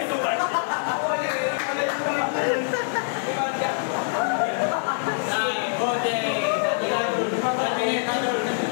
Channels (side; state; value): right; silent; 62 dB below the other